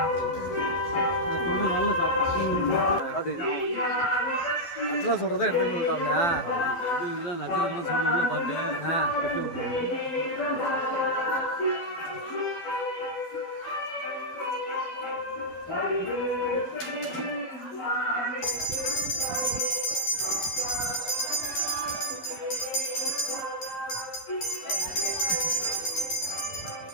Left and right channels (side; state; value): right; late; 12 ms